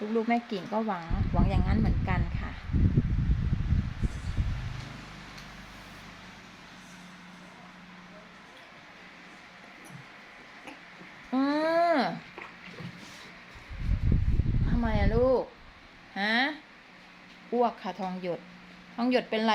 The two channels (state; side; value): identical; both; correlation 1.00